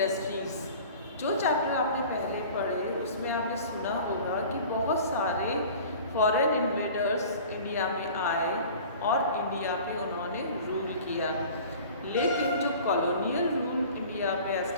जो chapter आपने पहले पढ़े उसमें आपने सुना होगा कि बहुत सारे फॉरेन इन्वेडर्स इंडिया में आए और इंडिया पे उन्होंने रूल किया, लेकिन जो कॉलोनियल रूल इंडिया पे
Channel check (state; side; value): inverted; both; correlation -0.43